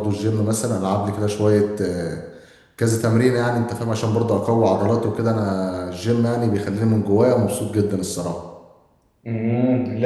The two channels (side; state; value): both; identical; correlation 1.00